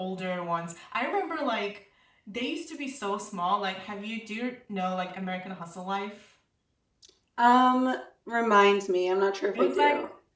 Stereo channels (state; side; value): identical; both; correlation 1.00